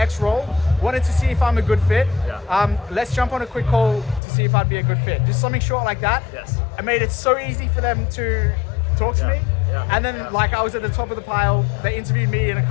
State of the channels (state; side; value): drops out; right; at 4.2 s